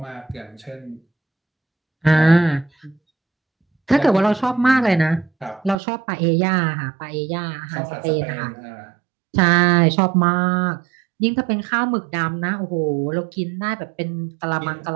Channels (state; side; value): drops out; left; at 5.8 s